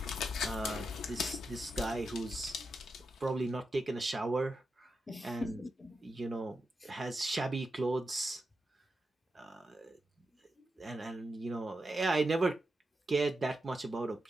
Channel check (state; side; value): normal; both; correlation 0.87